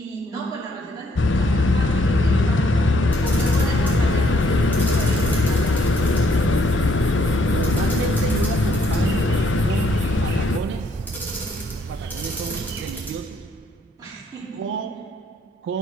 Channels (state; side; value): normal; both; correlation 0.68